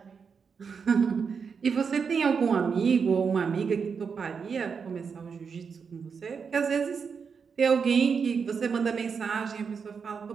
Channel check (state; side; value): quieter; left; 6.0 dB